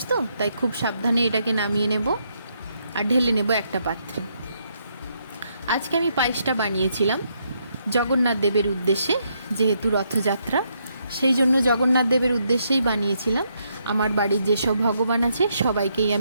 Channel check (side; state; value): both; inverted; correlation -0.76